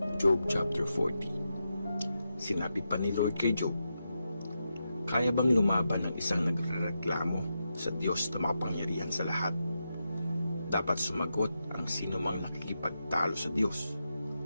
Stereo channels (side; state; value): both; inverted; correlation -0.87